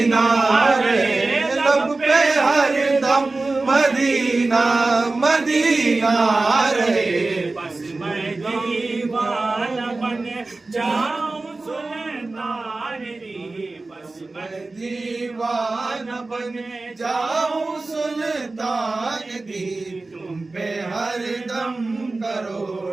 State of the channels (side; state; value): left; quieter; 3.3 dB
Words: رہے لب پہ ہر دم مدینہ مدینہ رہے بس میں دیوانہ بن جاؤں سلطان دی بس میں دیوانہ بن جاؤں سلطان دی تم پہ ہر دم